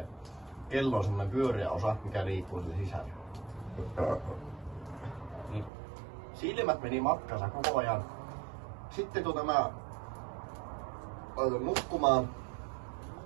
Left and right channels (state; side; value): drops out; left; at 5.7 s